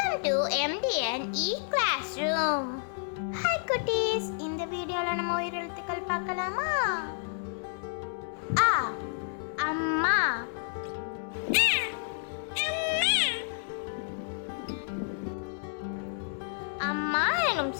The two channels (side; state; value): right; silent; 58 dB below the other